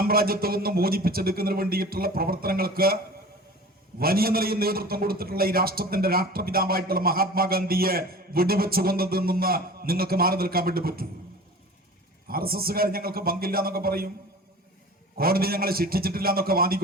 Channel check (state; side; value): normal; both; correlation 0.40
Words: നിന്ന് മോചിപ്പിച്ചെടുക്കുന്നതിന് വേണ്ടിയിട്ടുള്ള പ്രവർത്തനങ്ങൾക്ക് വലിയ നിലയിൽ നേതൃത്വം കൊടുത്തിട്ടുള്ള ഈ രാഷ്ട്രത്തിന്റെ രാഷ്ട്രപിതാവായിട്ടുള്ള മഹാത്മാഗാന്ധിയെ വെടിവെച്ചു കൊന്നതിൽ നിന്ന് നിങ്ങൾക്ക് മാറി നിൽക്കാൻ വേണ്ടി പറ്റൂ? RSSകാർ ഞങ്ങൾക്ക് പങ്കില്ല എന്നൊക്കെ പറയും, കോടതി ഞങ്ങളെ ശിക്ഷിച്ചിട്ടില്ല എന്നൊക്കെ